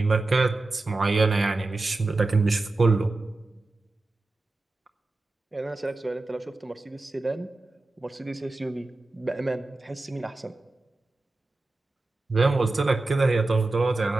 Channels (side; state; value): left; quieter; 3.2 dB